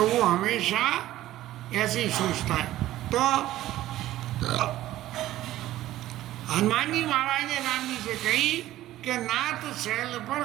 वो हमेशा ऐसे ही सोचता है। तो हनुमान जी महाराज ने राम जी से कही कि नाथ शैल पर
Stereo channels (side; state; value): left; quieter; 14.7 dB